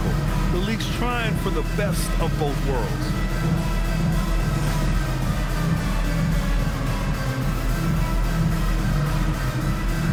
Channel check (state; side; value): identical; both; correlation 1.00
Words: The league's trying for the best of both worlds.